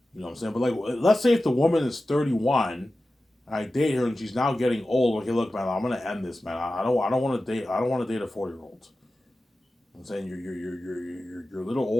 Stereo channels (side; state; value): both; normal; correlation 0.94